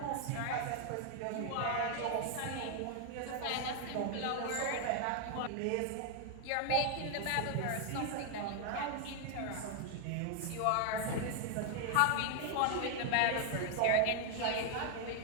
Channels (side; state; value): both; different; correlation 0.00